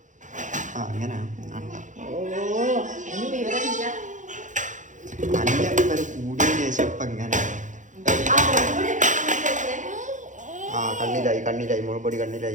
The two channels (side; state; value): left; late; 0.36 ms